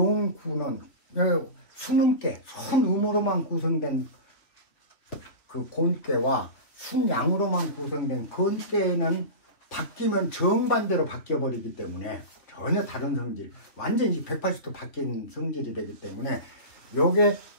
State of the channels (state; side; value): late; right; 3.2 ms